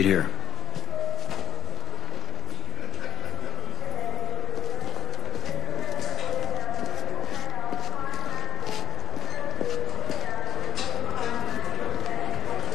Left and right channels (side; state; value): right; quieter; 10.6 dB